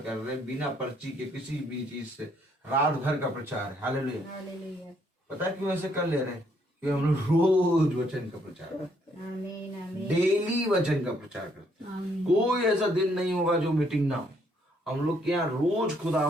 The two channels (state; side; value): normal; both; correlation 0.70